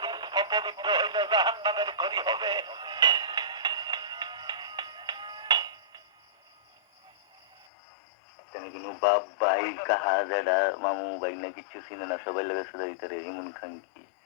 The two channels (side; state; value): right; drops out; at 7.7 s